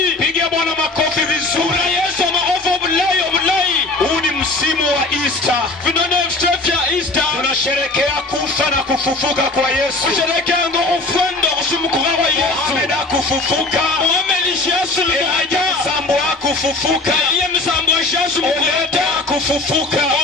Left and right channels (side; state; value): right; quieter; 3.1 dB